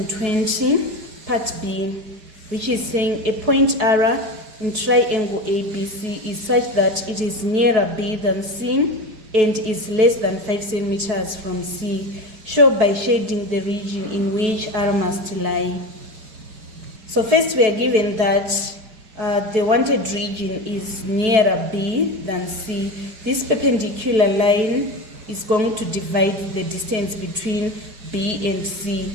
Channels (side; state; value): left; late; 4.9 ms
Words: part B, which is saying a point R in triangle ABC is such that it is nearer B than C and is less than 5 centimeters from C. Show by shading the region in which R must lie. So first we are given that the wanted region is nearer B than C. This perpendicular line is going to divide the distance between B and C.